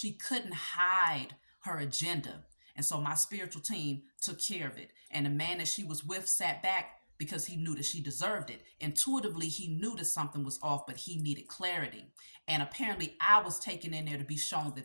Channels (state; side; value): inverted; both; correlation -1.00